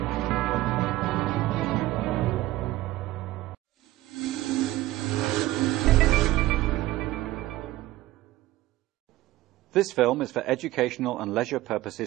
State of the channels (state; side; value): quieter; left; 16.7 dB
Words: This film is for educational and leisure